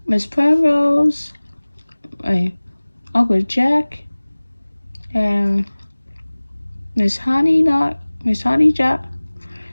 Perose, Uncle Jack, and Miss Honeycutt,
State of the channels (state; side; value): inverted; both; correlation -1.00